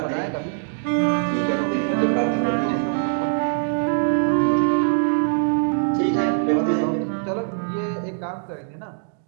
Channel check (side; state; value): left; silent; digital silence